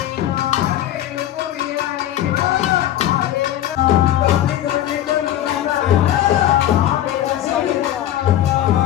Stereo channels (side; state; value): right; quieter; 12.4 dB